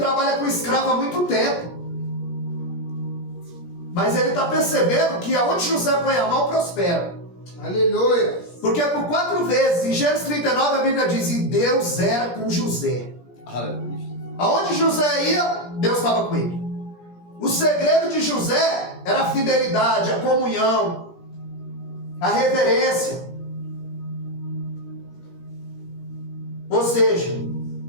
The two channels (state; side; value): late; right; 17 ms